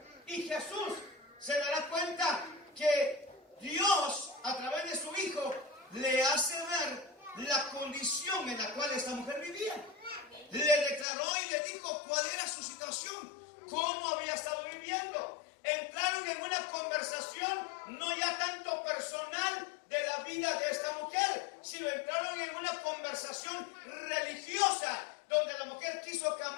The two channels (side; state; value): right; drops out; at 11.1 s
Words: y Jesús, se dará cuenta que Dios, a través de su Hijo, le hace ver la condición en la cual esta mujer vivía. Le declaró y le dijo cuál era su situación, cómo había estado viviendo. Entraron en una conversación no ya tanto